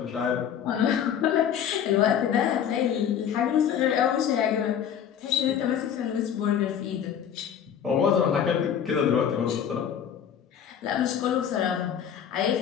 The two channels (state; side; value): quieter; right; 8.8 dB